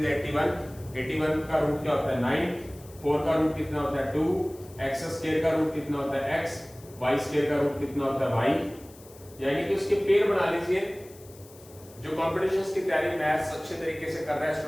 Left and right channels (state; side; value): noise; left; hiss, 23 dB below the sound